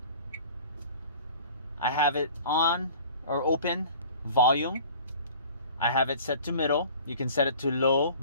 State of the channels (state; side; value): inverted; both; correlation -0.45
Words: I have it on or open. Volume, I have it set to middle. You can set it to low,